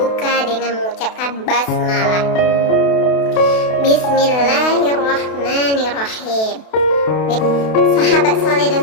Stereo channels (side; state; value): right; late; 32 ms